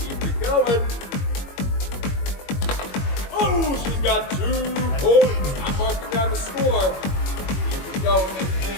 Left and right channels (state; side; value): late; right; 21 ms